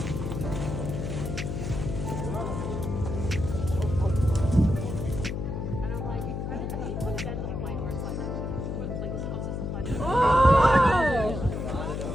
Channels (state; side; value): noise; left; hum, 3 dB below the sound